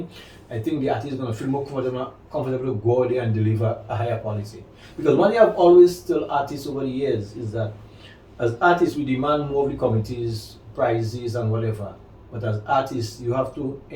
I think the artist is gonna feel more comfortable to go out there and deliver a higher quality. Because one thing I've always told artists over the years is that as artists we demand more of the committees, prizes and whatever. But as artists you have to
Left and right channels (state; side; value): identical; both; correlation 1.00